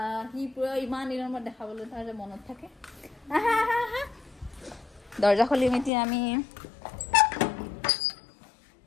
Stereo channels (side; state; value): right; drops out; at 5.9 s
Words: সি পুৰা ইমান দিনৰ মূৰত দেখাবলৈ তাৰ যে মনত থাকে দৰ্জা খুলিম এতিয়া আমি